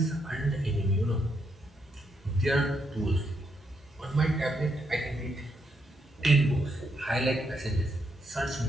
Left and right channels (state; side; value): normal; both; correlation 0.79